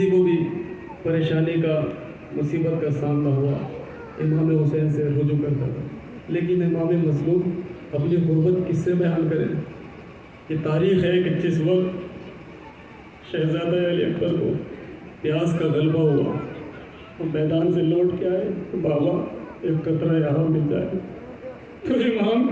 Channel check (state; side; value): identical; both; correlation 1.00